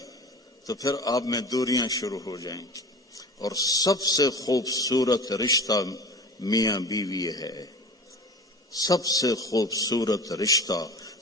تو پھر آپ میں دوریاں شروع ہو جائیں گی. اور سب سے خوبصورت رشتہ میاں بیوی ہے، سب سے خوبصورت رشتہ،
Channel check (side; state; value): both; normal; correlation 0.36